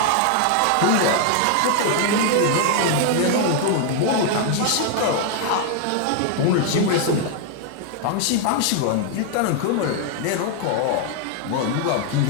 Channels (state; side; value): different; both; correlation 0.00